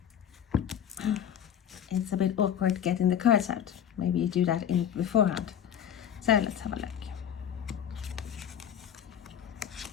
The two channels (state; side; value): quieter; right; 9.2 dB